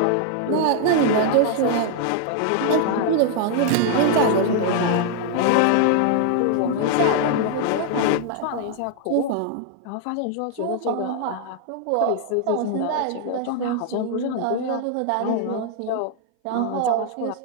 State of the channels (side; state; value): both; different; correlation 0.00